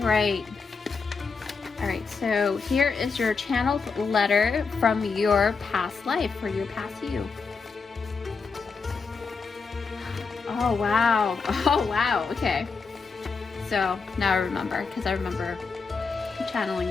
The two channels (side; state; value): right; quieter; 4.9 dB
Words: so here is your channeled letter from your past life, or your past you. Oh wow, okay. So now I remember, because I remember channeling